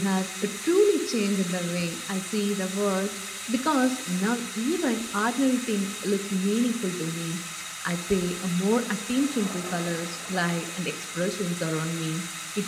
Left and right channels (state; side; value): identical; both; correlation 1.00